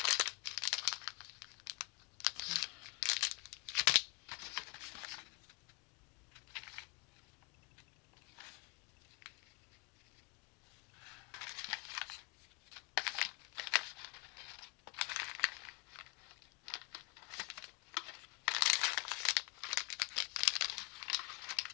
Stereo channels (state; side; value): quieter; right; 32.0 dB